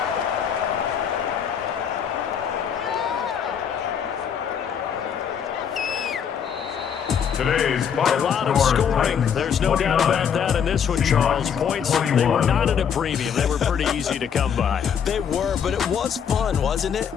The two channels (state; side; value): quieter; right; 7.7 dB